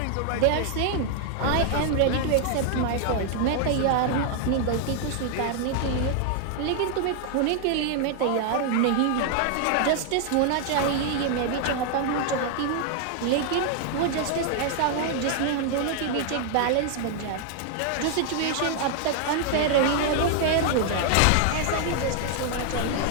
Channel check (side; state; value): both; different; correlation 0.00